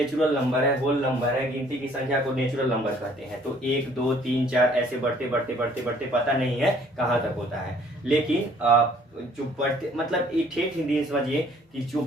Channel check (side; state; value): both; normal; correlation 0.59